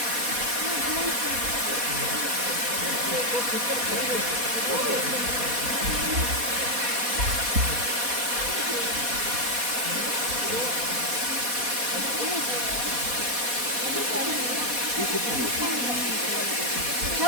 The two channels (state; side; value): late; left; 4.1 ms